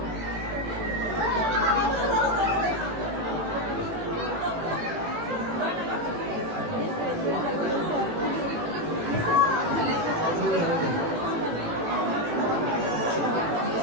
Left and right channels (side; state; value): left; late; 18 ms